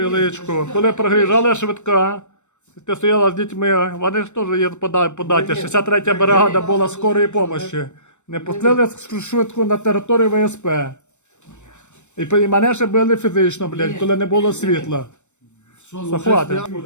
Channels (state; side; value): late; right; 0.84 ms